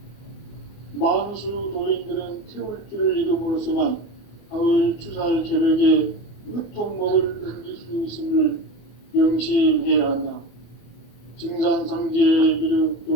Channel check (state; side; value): late; right; 25 ms